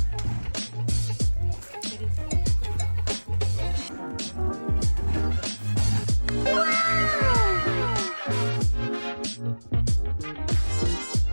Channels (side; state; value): both; inverted; correlation -1.00